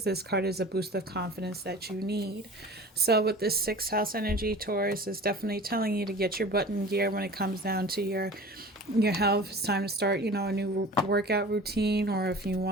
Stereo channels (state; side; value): normal; both; correlation 0.40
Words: This card is a boost of confidence that you need. So with this 6th house energy, Taurus is definitely telling you to get your butt in gear when it comes down to your health. It's time to start, a new workout routine, or if you